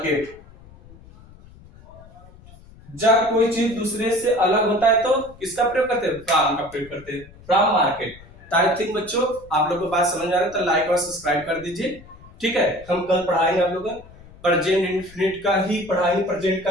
जब कोई चीज दूसरे से अलग होता है तो किसका प्रयोग करते हैं, फ्रॉम का प्रयोग करते हैं, फ्रॉम मार्केट। आई थिंक बच्चों आप लोगों को बात समझ आ रहा है तो लाइक और सब्सक्राइब कर दीजिए। ठीक है, हम कल पढ़ाएंगे आप लोगों को प्रेजेंट इंडेफिनिट का ही पढ़ाएंगे, प्रेजेंट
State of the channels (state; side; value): noise; left; rumble, 22 dB below the sound